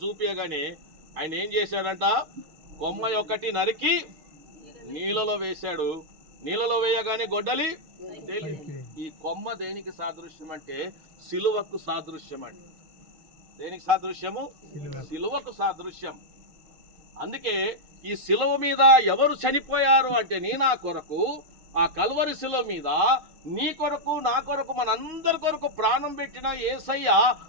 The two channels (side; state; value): left; late; 6.3 ms